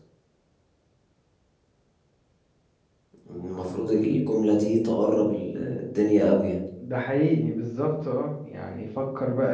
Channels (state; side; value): identical; both; correlation 1.00